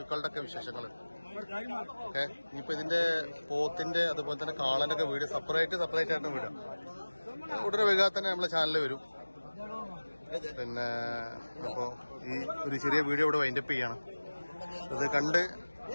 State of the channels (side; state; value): both; inverted; correlation -1.00